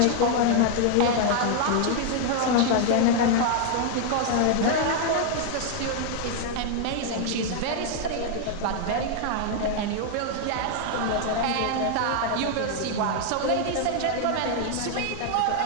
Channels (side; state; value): both; different; correlation 0.00